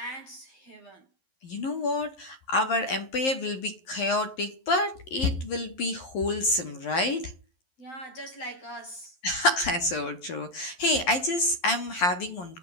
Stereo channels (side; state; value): right; late; 11 ms